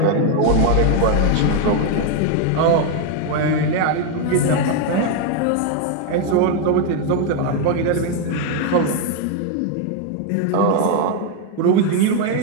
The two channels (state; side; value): different; both; correlation 0.01